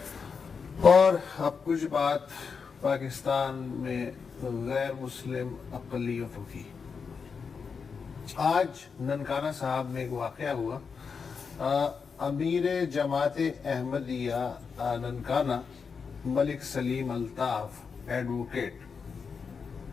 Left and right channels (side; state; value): right; quieter; 5.6 dB